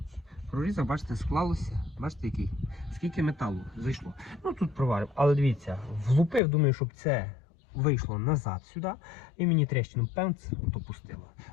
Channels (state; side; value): drops out; right; at 6.4 s